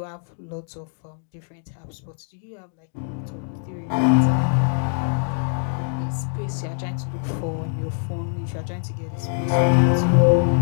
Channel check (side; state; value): right; silent; digital silence